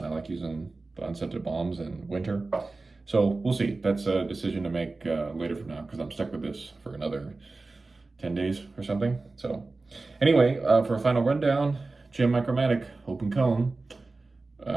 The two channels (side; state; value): left; quieter; 3.5 dB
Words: I like using the unscented balms in winter. So we'll see. That's a decision to make later from now, because I'm stuck with this for another 10 days or something. So anyway, for a final rundown, Jim Micromatic open cone,